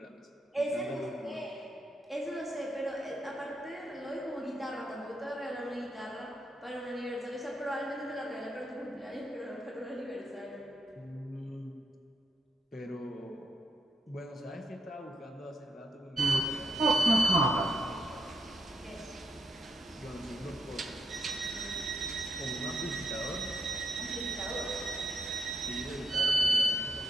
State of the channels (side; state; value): both; normal; correlation 0.79